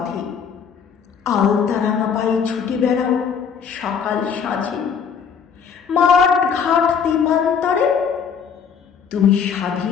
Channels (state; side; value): quieter; right; 6.9 dB